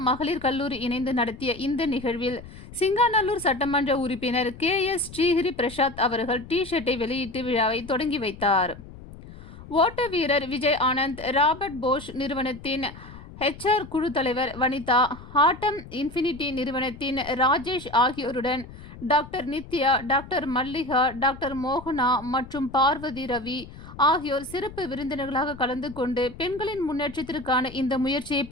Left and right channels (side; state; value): left; noise; rumble, 16 dB below the sound